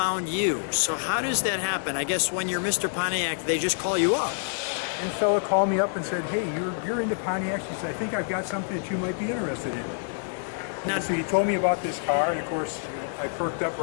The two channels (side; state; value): right; silent; 60 dB below the other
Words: you. So how does that happen? I guess when you're Mr. Pontiac, they just call you up. And a fella called me up and said, hey, you're into Pontiacs. He said, I think I've got something that you might be interested in. Now, So he told me about this car, and of course, I perked up